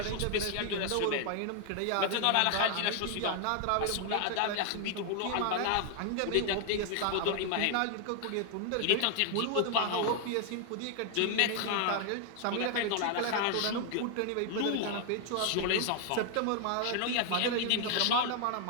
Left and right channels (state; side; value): different; both; correlation 0.00